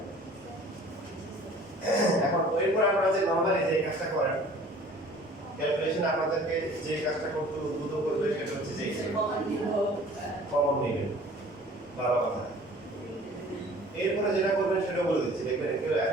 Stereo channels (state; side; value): normal; both; correlation 0.49